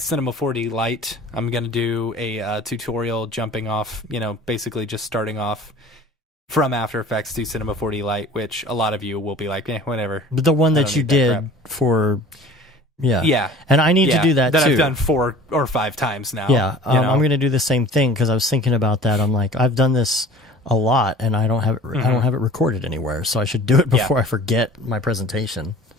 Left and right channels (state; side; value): normal; both; correlation 0.45